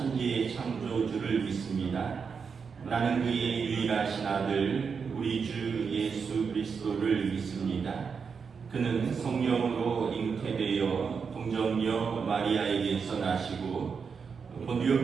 창조주를 믿습니다. 나는 그의 유일하신 아들 우리 주 예수 그리스도를 믿습니다. 그는 성령으로 잉태되어 동정녀 마리아에게서 나시고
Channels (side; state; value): left; quieter; 5.9 dB